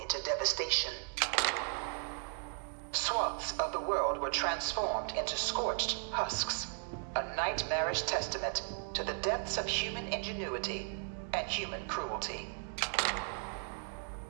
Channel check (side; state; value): left; silent; 54 dB below the other